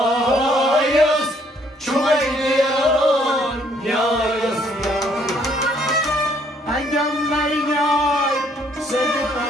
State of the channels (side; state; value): both; normal; correlation 0.66